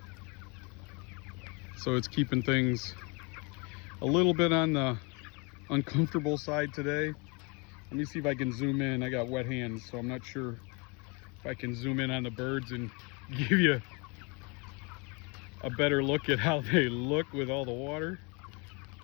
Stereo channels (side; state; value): right; quieter; 30.4 dB